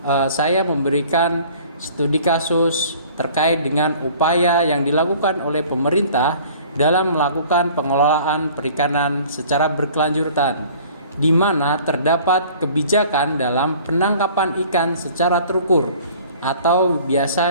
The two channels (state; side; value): inverted; both; correlation -0.50